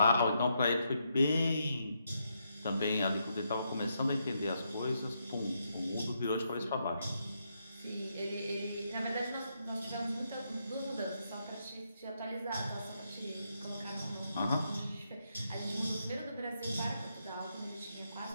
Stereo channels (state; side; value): inverted; both; correlation -0.79